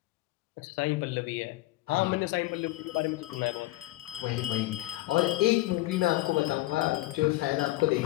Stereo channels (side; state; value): right; quieter; 18.4 dB